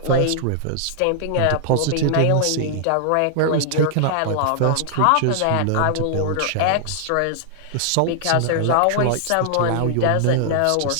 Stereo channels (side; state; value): both; different; correlation -0.01